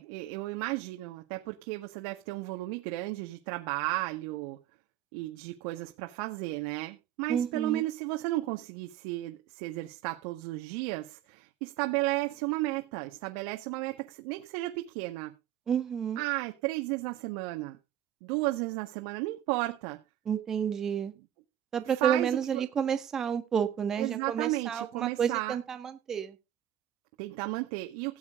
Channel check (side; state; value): left; quieter; 11.6 dB